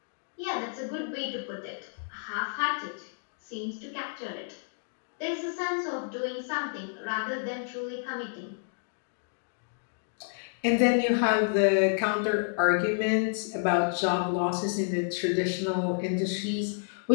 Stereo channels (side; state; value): right; silent; digital silence